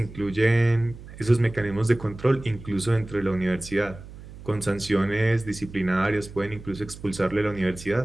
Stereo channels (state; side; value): noise; right; hum, 16 dB below the sound